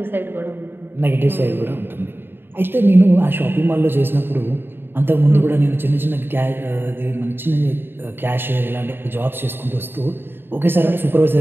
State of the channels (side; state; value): left; late; 0.10 ms